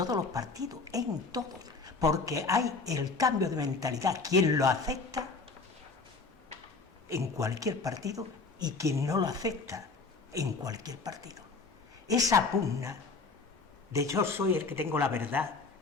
los partidos, en todos, porque hay el cambio de mentalidad, quien lo acepta en cualquier partido y quien no lo acepta en cualquier partido. Esa pugna de yo soy el que tengo la verdad,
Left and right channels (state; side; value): quieter; right; 4.2 dB